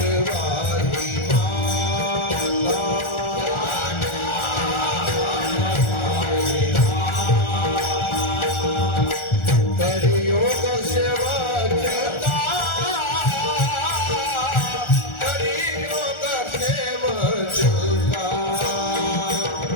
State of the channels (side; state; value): right; late; 1.4 ms